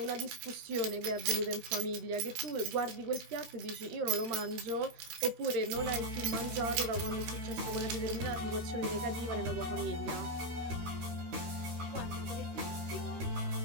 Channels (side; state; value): left; late; 13 ms